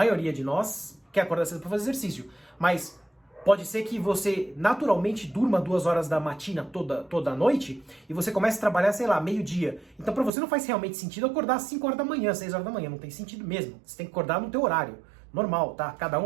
de nós quer acordar cedo para fazer exercício. Mas pode ser que você naturalmente durma 2 horas da matina toda noite e você comece a trabalhar, sei lá, meio-dia. Então para você não faz realmente sentido acordar às 5 horas da manhã, 6 horas da manhã. Não tem sentido mesmo. Você tem que acordar no teu horário. Normal, tá? Cada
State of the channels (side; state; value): left; drops out; at 10.3 s